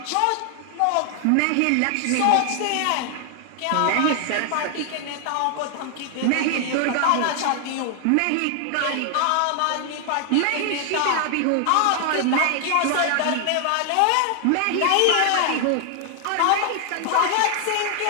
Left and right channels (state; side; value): different; both; correlation 0.00